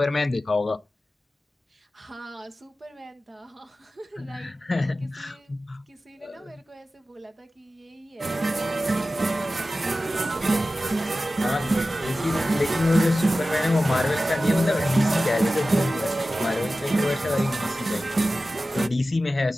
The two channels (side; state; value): both; normal; correlation 0.95